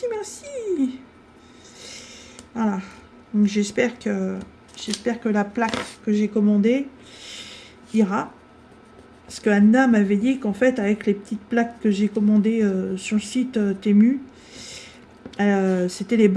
merci. Voilà. Donc j'espère que la plaque que j'ai commandée ira. Parce que Anna m'avait dit qu'en fait, avec les petites plaques que j'ai commandées sur le site Temu, c'était les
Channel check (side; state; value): both; identical; correlation 1.00